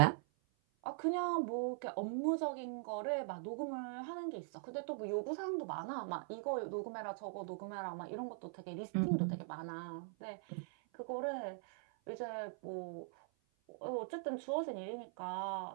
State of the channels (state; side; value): silent; left; 50 dB below the other